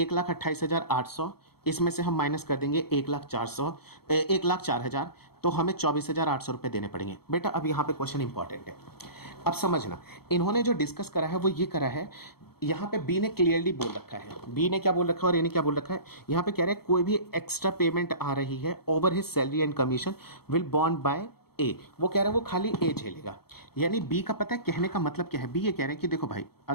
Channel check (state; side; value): late; right; 0.96 ms